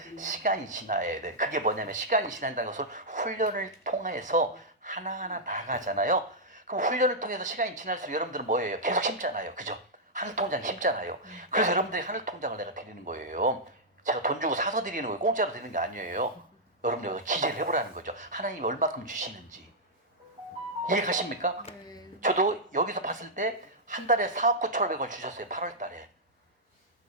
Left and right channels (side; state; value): both; normal; correlation -0.08